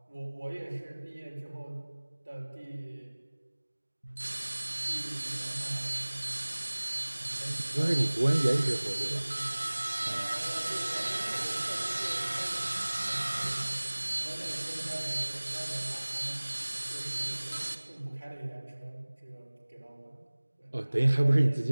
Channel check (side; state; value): both; inverted; correlation -1.00